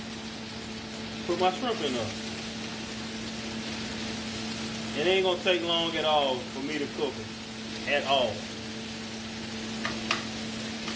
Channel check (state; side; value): identical; both; correlation 1.00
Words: put my shrimp in there. It ain't going to take long at all for me to cook it. At all.